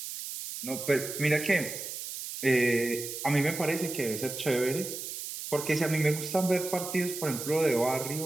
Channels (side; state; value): right; noise; hiss, 7 dB below the sound